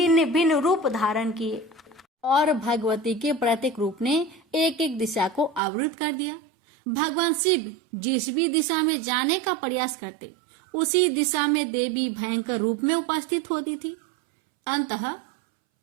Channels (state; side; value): drops out; left; at 5.6 s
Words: भिन्न रूप धारण किए और भगवती के प्रत्येक रूप ने एक एक दिशा को अवरुद्ध कर दिया। भगवान शिव जिस भी दिशा में जाने का प्रयास करते, उसी दिशा में देवी भयंकर रूप में उपस्थित होती थी। अंततः